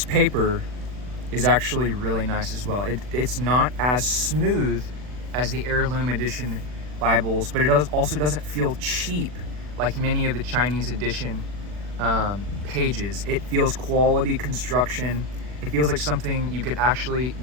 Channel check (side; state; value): left; late; 40 ms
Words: paper is actually really nice as well. It's not as smooth as the Heirloom Edition Bibles, but it also doesn't feel cheap like many of the Chinese edition pages. It feels quality construction. It feels like something you could actually